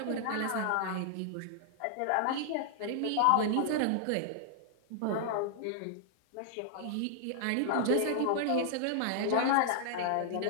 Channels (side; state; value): both; different; correlation -0.01